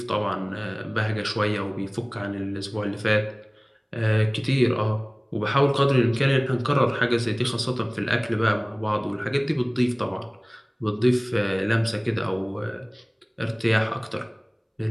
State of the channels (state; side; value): identical; both; correlation 1.00